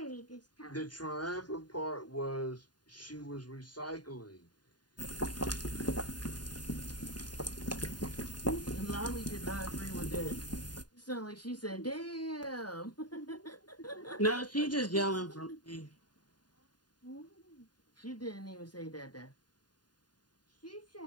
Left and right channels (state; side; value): late; right; 0.70 ms